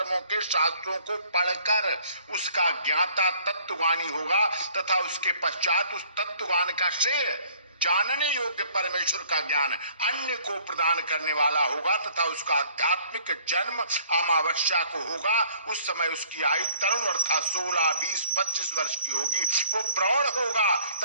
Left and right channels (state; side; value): inverted; both; correlation -0.57